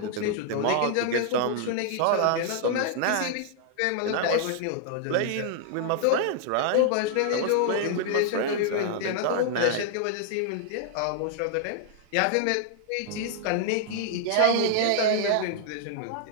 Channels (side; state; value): both; different; correlation 0.00